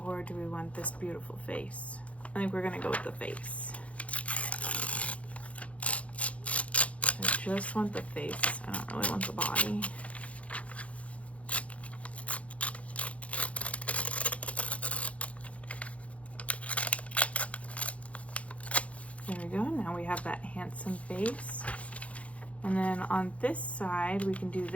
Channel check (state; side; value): late; right; 0.064 ms